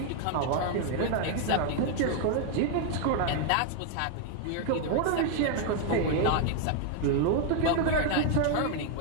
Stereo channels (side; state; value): both; different; correlation 0.00